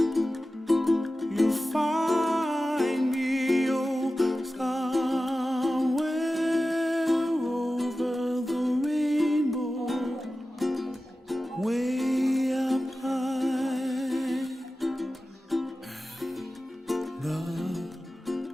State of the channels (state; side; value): normal; both; correlation 0.95